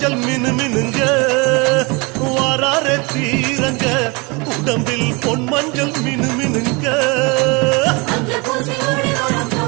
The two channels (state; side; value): quieter; left; 28.2 dB